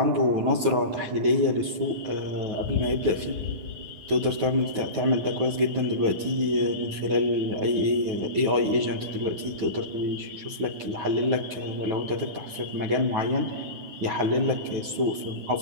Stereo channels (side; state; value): left; late; 9.2 ms